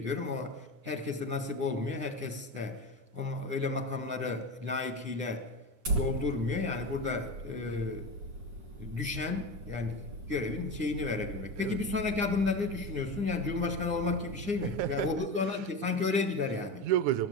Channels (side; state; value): left; late; 9.8 ms